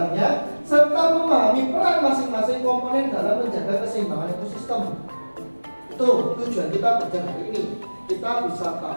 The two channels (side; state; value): both; inverted; correlation -1.00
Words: serta memahami peran masing-masing komponen dalam menjaga keseimbangan ekosistem. Itu tujuan kita belajar hari ini. Kita bisa